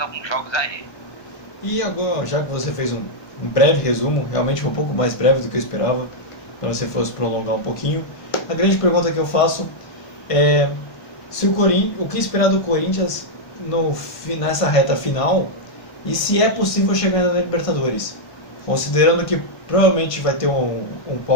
jogos aí. E agora, já que você fez um breve resumo, realmente um pouco mais breve do que eu esperava, para você fosse prolongar um pouquinho, a grande pergunta que eu faço é se o que esperar do Corinthians nessa reta final, e se é possível chegar na Libertadores, considerando que provavelmente vai ter um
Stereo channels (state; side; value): late; right; 1.5 ms